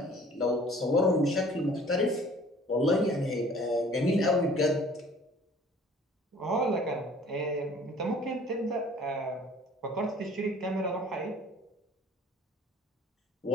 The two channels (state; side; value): normal; both; correlation 0.51